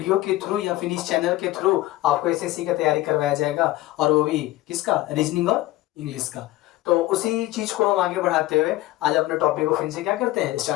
के थ्रू या फिर इस चैनल के थ्रू आपको एसएससी का तैयारी करवाया जाएगा, और वो भी किसका, रीजनिंग और इंग्लिश का। तो उसी चीज को हम आगे बढ़ाते हुए आज अपने टॉपिक को फिर से क्या करते हैं,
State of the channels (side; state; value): right; quieter; 16.9 dB